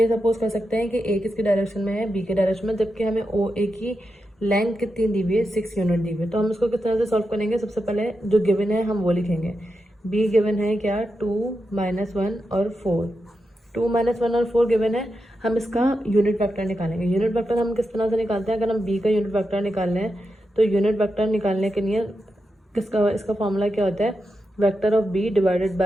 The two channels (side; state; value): both; normal; correlation 0.87